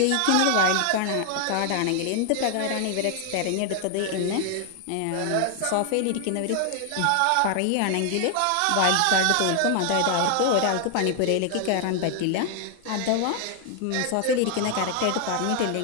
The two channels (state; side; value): different; both; correlation 0.00